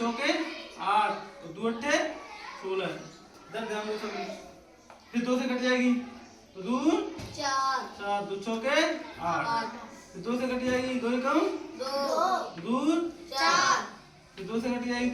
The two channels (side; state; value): both; identical; correlation 1.00